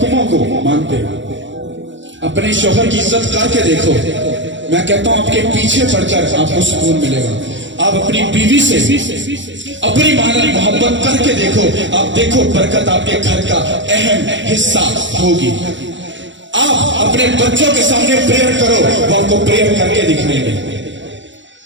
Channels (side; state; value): left; late; 0.54 ms